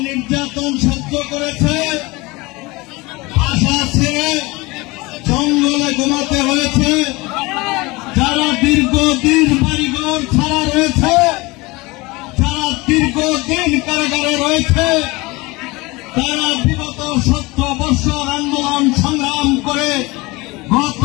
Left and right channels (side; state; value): right; quieter; 23.2 dB